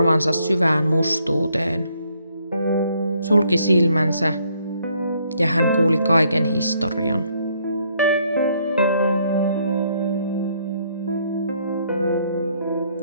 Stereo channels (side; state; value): both; inverted; correlation -0.69